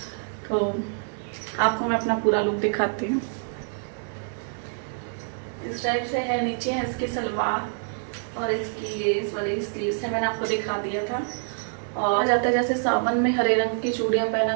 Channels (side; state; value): left; silent; 61 dB below the other